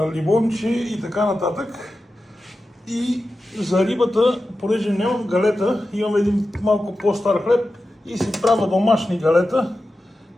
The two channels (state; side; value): normal; both; correlation 0.92